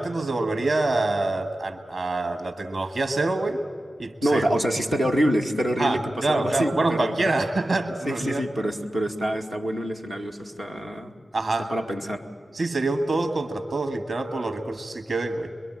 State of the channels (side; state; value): both; normal; correlation 0.93